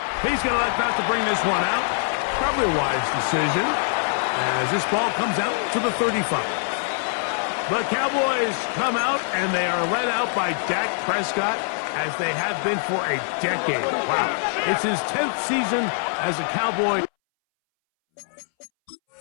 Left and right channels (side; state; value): right; silent; 62 dB below the other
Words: He's going to elect not to bring this one out. Probably a wise decision as this ball comes out to the 35. The Cowboys come out, and they are led out by Dak Prescott, as they have been for a decade. Wow. It's his 10th season as a Cowboy.